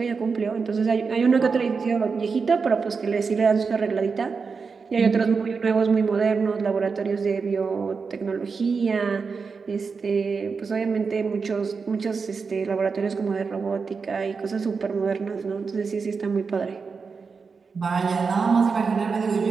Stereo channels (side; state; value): left; quieter; 5.1 dB